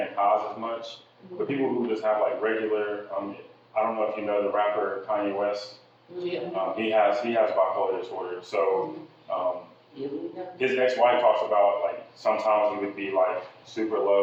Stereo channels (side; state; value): both; identical; correlation 1.00